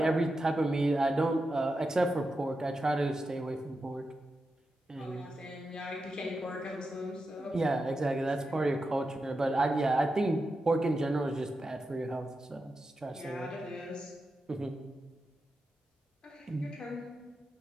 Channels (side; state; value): both; normal; correlation 0.89